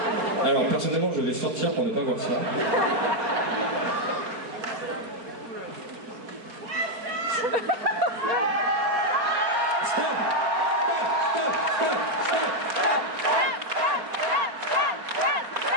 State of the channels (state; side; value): late; left; 4.3 ms